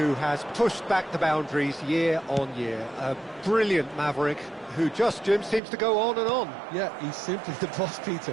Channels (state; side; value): drops out; left; at 5.6 s